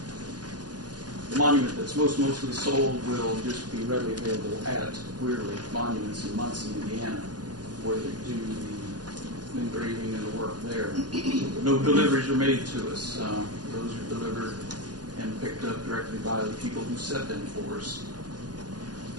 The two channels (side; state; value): left; late; 0.69 ms